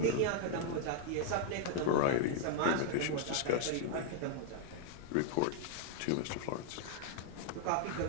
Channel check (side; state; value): both; different; correlation 0.00